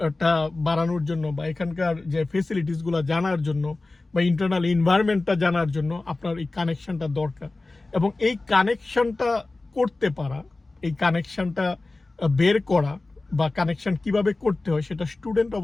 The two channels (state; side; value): quieter; right; 3.2 dB